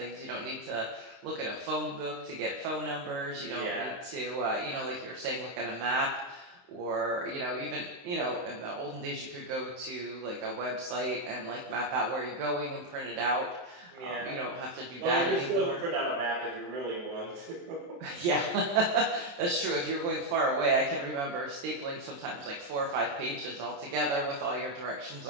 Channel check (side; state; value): left; late; 23 ms